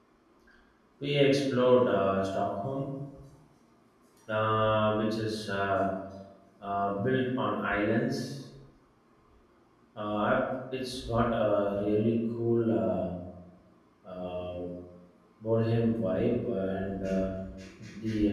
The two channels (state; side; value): identical; both; correlation 1.00